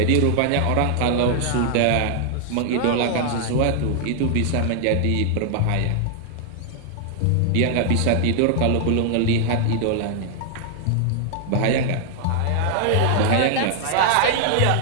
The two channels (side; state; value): both; different; correlation 0.00